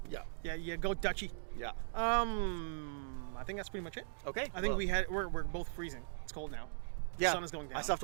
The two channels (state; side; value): silent; left; digital silence